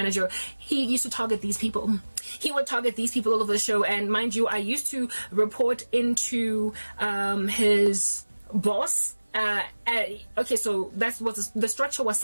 He used to target these people. He would target these people all over the show, and mind you, I used to report into his boss. Okay, so that's what the structure was,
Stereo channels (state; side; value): inverted; both; correlation -1.00